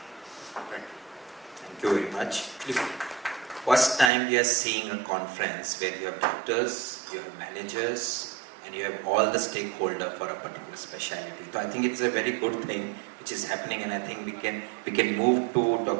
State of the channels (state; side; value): drops out; left; at 4.1 s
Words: Thank you. Thank you very much. First time we are seeing a conference where you have doctors, you have managers, and you have all the stakeholders for a particular specialty. So I think it's a very good thing which is happening, and I think we can move to